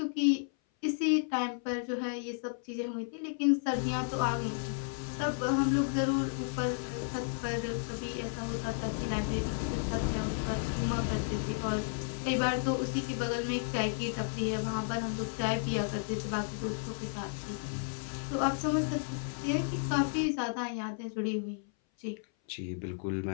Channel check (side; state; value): right; silent; 56 dB below the other